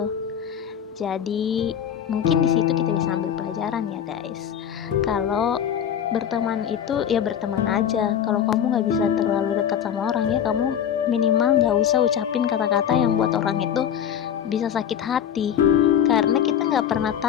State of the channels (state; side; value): quieter; right; 9.1 dB